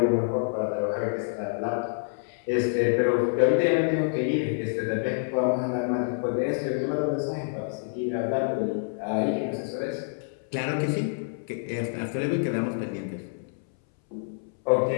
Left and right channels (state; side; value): silent; right; 60 dB below the other